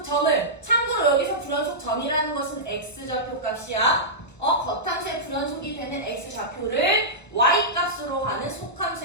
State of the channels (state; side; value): late; right; 1.0 ms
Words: 참고로 여기서 불연속점이라는 것은 x좌표 값이야. 겉함수의 불연속이 되는 x좌표를 y값으로 하는